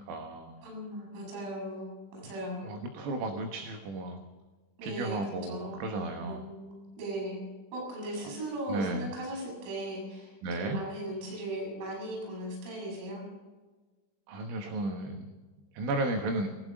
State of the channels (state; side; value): late; left; 20 ms